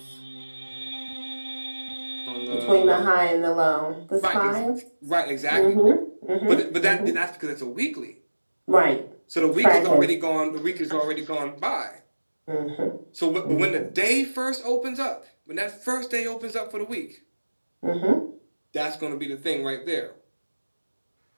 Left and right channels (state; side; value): inverted; both; correlation -1.00